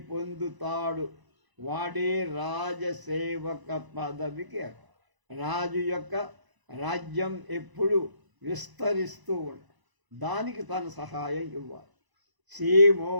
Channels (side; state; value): left; late; 1.0 ms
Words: పొందుతాడు వాడే రాజసేవక పదవికి. రాజు యొక్క రాజ్యం ఎప్పుడు విస్తరిస్తూ ఉంటుంది, దానికి తన సహాయం ఇవ్వాలి. సీమో